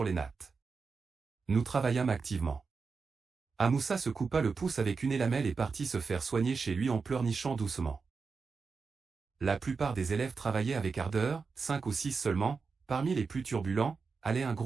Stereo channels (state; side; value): quieter; left; 4.9 dB